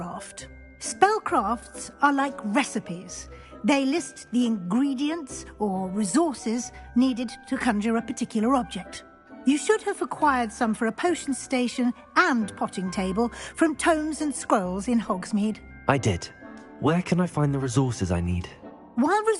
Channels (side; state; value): both; identical; correlation 1.00